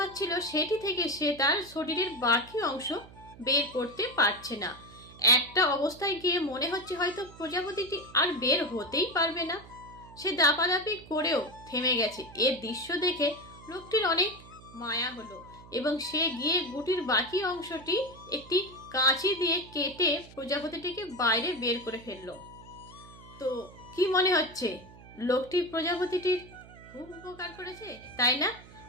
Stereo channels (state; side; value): noise; right; hum, 20 dB below the sound